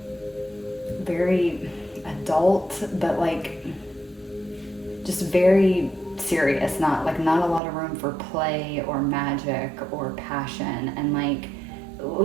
very adult, but like just very serious, not a lot of room for play or magic or passion, and like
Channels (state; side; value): drops out; left; at 7.6 s